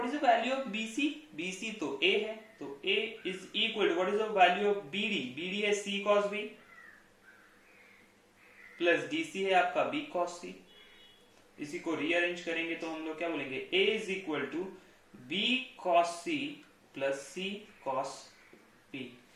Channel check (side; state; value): both; identical; correlation 1.00